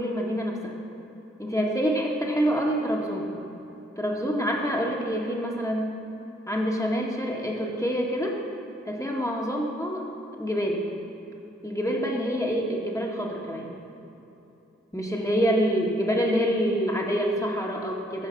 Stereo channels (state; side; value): normal; both; correlation 0.68